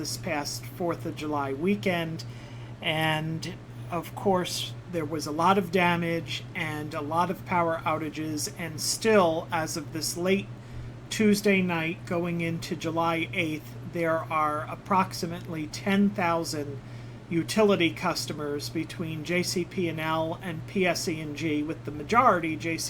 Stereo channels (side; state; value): both; identical; correlation 1.00